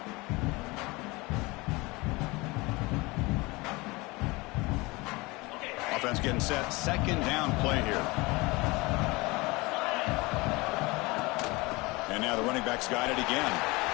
Offense getting set. Second down play here. And now the running back's got it again.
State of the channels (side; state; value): right; quieter; 23.8 dB